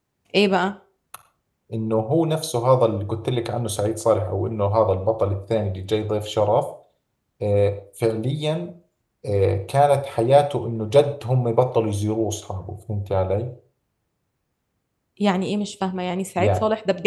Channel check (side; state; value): both; identical; correlation 1.00